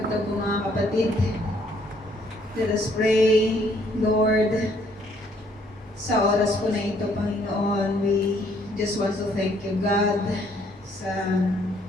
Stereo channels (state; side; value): normal; both; correlation 0.65